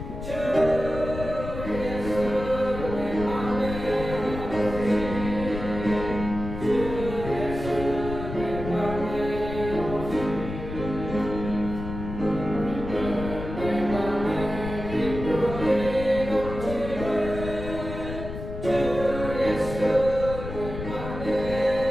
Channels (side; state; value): left; noise; rumble, 8 dB below the sound